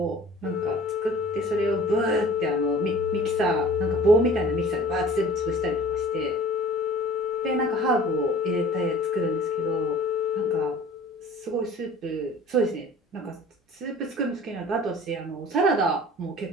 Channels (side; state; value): both; normal; correlation 0.46